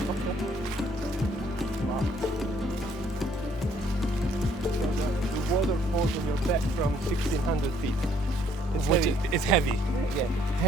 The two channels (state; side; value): normal; both; correlation 0.65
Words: Wow. The water falls on your back from 1,600 feet. It's heavy. Yeah.